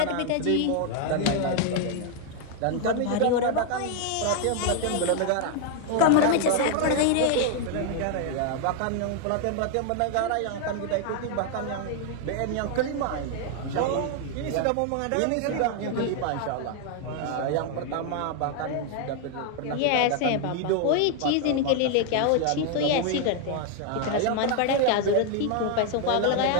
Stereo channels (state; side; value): different; both; correlation 0.00